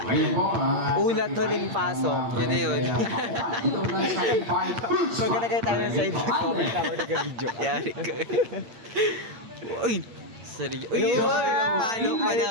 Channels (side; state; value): left; late; 8.8 ms